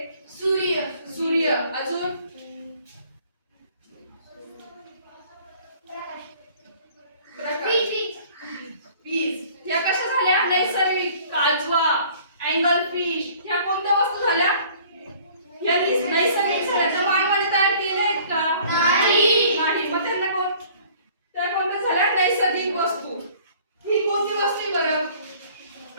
सूर्य. सूर्य. अजून? वीज. या कशा झाल्या? नैसर्गिक. काजवा, अँगल फिश ह्या कोणत्या वस्तू झाल्या? या नैसर्गिक झाल्या. त्या मानवाने तयार केल्या आहेत का? नाही. मग त्यांना त्या कोणत्या झाल्या? नैसर्गिक वस्तू. ही कोणती वस्तू आहे बरं?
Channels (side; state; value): both; inverted; correlation -0.53